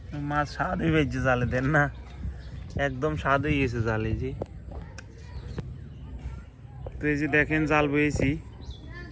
মাছ স্বাদ হয়ে গেছে জালে দেন না, একদম স্বাদ হয়ে গেছে জালে। যে তো এই যে দেখেন জাল বয়েছি,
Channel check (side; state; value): both; identical; correlation 1.00